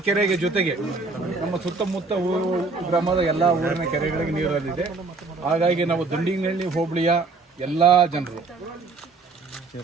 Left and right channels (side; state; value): left; quieter; 3.9 dB